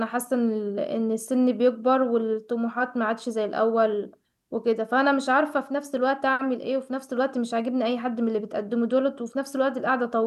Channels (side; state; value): both; identical; correlation 1.00